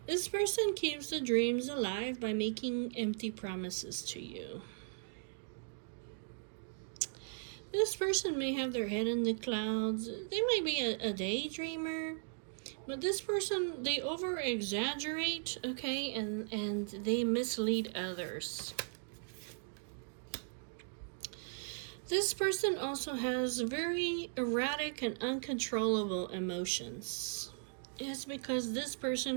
This person keeps the dreams alive by making empty promises to you. This person may have their head in the clouds. They might be a daydreamer. But this person, they over-exaggerate, okay, and they mislead others. This person also has very erratic and uncontrollable emotions. It's because this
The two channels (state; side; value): silent; left; digital silence